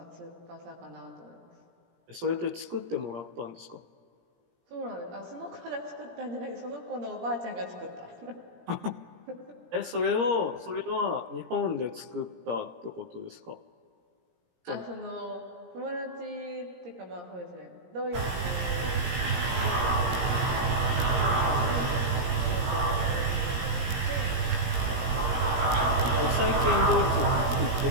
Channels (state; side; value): late; left; 17 ms